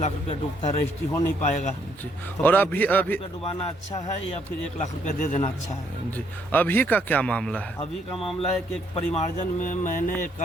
रुपया डूबता है, रजिस्ट्री हो नहीं पाएगा जी। तो और 35 लाख अभी रुपया डुबाना अच्छा है या फिर 1 लाख रुपया दे देना अच्छा है? जी। अभी का क्या मामला है? अभी का मामला है कि एक परिमार्जन में मैंने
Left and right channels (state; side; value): normal; both; correlation 0.70